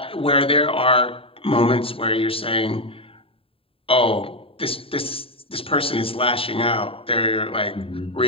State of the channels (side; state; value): right; late; 0.27 ms